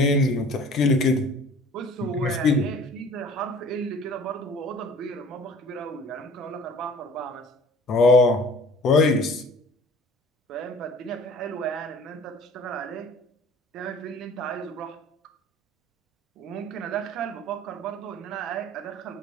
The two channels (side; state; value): both; normal; correlation 0.49